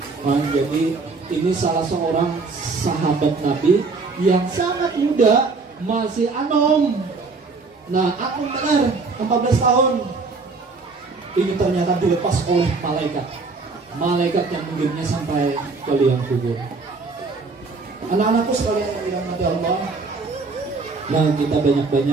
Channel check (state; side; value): quieter; left; 4.1 dB